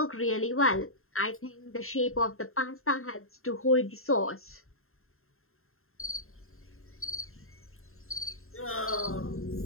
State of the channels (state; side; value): late; right; 0.62 ms